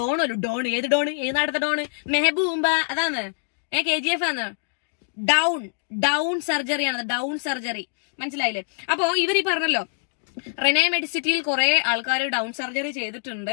ഏത് നാടത്തെ ഡോണ്? മെഹബൂമ്പ അതാണ്. KGF ആണ്. ഡൗൺ സർജറിയാണ്, ഡൗൺ സർജറി. മനസ്സിലായില്ലേ? അപ്പോ ഇവരീ പറഞ്ഞല്ലോ, റെനെ മെഡിസിറ്റിയിൽ കുറെ ആൾക്കാർ ഡൗൺ സർജറി ചെയ്തിട്ടുണ്ട്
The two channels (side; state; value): right; silent; digital silence